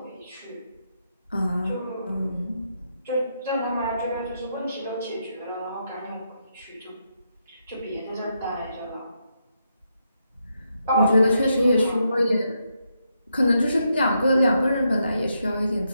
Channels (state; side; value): inverted; both; correlation -0.80